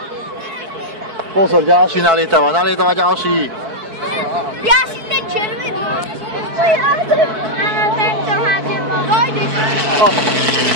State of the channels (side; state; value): left; late; 4.6 ms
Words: Pozor, ďalší nalietava ďalší. Ja si ten červený. Áno, tento hádem. Vojdeš.